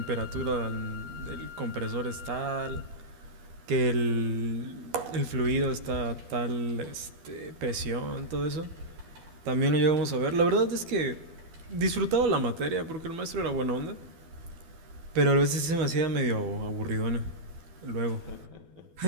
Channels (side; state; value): left; late; 12 ms